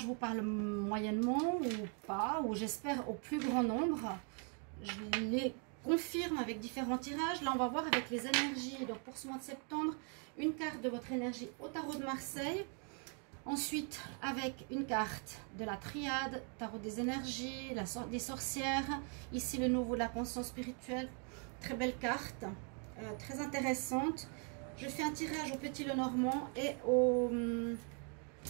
vous parle moyennement ou pas, ou j'espère au plus grand nombre, je les confirme avec différents tirages. Là, on va voir avec les énergies. Donc, pour ce mois de septembre, une carte de votre énergie au tarot de Marseille. Ensuite, avec une carte de la triade, tarot des énergies, des sorcières. Ici, le nouveau de la conscience spirituelle. Très belle carte, très intéressante. Je fais un tirage au Petit Lenormand et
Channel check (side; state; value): left; quieter; 39.9 dB